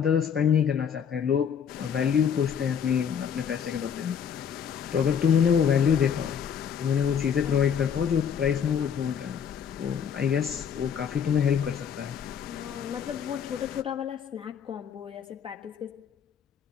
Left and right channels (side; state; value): right; quieter; 7.7 dB